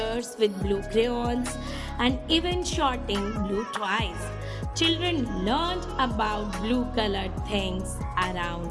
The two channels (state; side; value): identical; both; correlation 1.00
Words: with blue crayons, and even shorting blue toys. Children learned about blue colored things